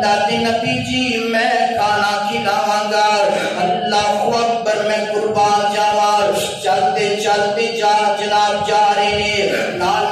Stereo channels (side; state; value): both; identical; correlation 1.00